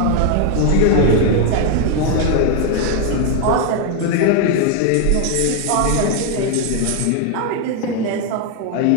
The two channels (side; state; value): both; different; correlation 0.01